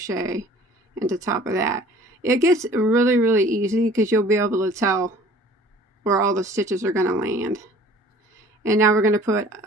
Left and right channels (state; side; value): normal; both; correlation 0.50